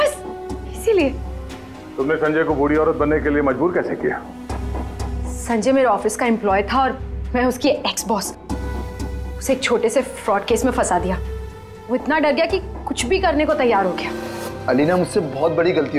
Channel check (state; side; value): identical; both; correlation 1.00